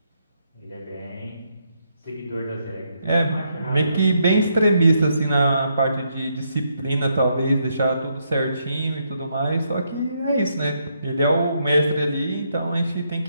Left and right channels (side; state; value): both; inverted; correlation -0.77